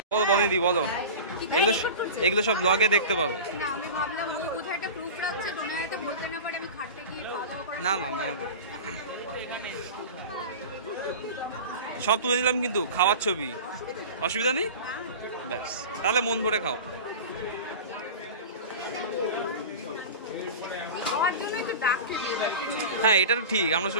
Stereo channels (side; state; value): both; inverted; correlation -0.32